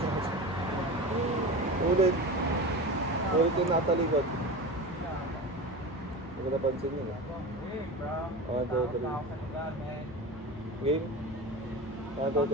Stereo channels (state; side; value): normal; both; correlation 0.28